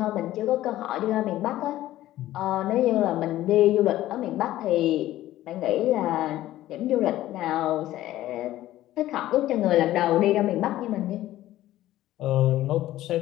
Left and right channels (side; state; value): right; quieter; 14.6 dB